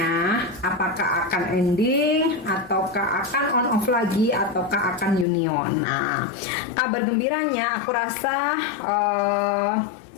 Apakah akan ending, ataukah akan on off lagi, ataukah akan union? Nah, kabar gembiranya aku rasa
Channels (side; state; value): right; drops out; at 5.2 s